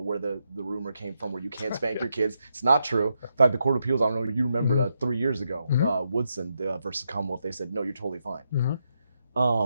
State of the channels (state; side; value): inverted; both; correlation -0.82